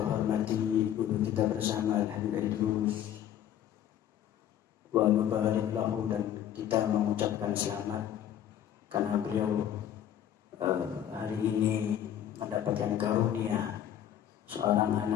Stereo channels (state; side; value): quieter; right; 10.6 dB